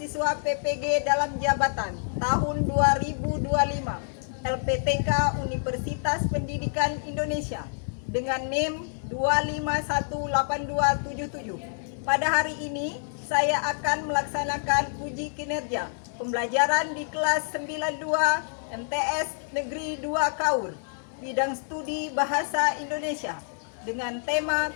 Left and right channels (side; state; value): right; silent; 60 dB below the other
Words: PPG dalam jabatan tahun 2025 LPTK Universitas Pendidikan Indonesia dengan NIM 2518277. Pada hari ini saya akan melaksanakan uji kinerja pembelajaran di kelas 92 MTS Negeri 2 Kaur, bidang studi Bahasa Indonesia dengan tema